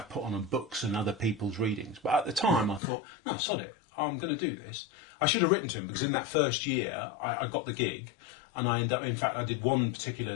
put on books and other people's readings. But at the time I thought, no, sod it, I'm going to do this. I should have written to him, because in that first year I got the gig, and I ended up... In fact, I did one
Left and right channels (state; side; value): drops out; right; at 2.8 s